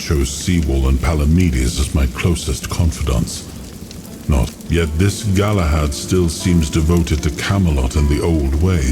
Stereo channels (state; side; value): identical; both; correlation 1.00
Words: Seawall and Palamedes as my closest confidants. Not yet this Galahad still seems devoted to Camelot and the old